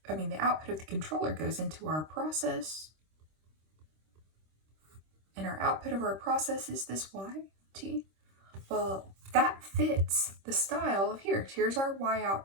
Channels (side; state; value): left; late; 26 ms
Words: output of the controller goes into our process. And our output of our process is this Y, T. Well, that fits the style of here. Here's our Y